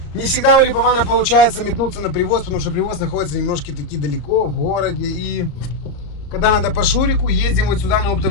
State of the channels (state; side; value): late; right; 34 ms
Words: Не всегда у Липована получается метнуться на привоз, потому что привоз находится немножко таки далеко, в городе. И когда надо по Шурику, ездим вот сюда на